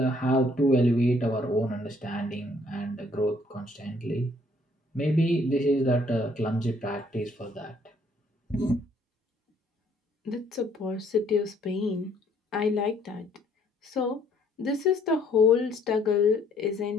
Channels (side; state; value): both; normal; correlation 0.64